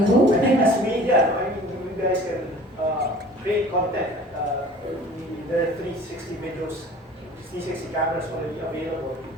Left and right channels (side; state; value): both; normal; correlation 0.45